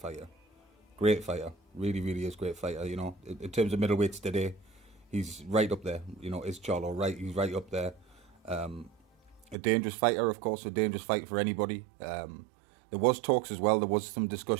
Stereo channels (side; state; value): left; drops out; at 9.6 s